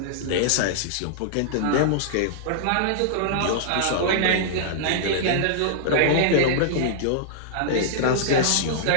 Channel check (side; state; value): both; different; correlation -0.02